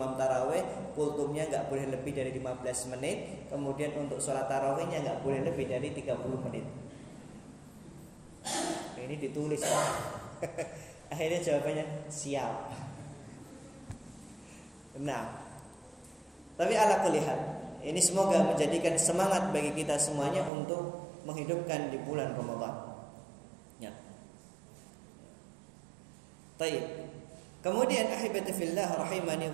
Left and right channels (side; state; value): left; drops out; at 20.5 s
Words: tarawih, kultumnya enggak boleh lebih dari 15 menit. Kemudian untuk sholat tarawihnya enggak boleh lebih dari 30 menit. Ini ditulis. Akhirnya jawabannya siap. Nah, tapi ala kulli hal, ini semoga menjadikan semangat bagi kita semuanya untuk menghidupkan di bulan Ramadan. Ya. Baik. Kemudian ahibati fillah rahimani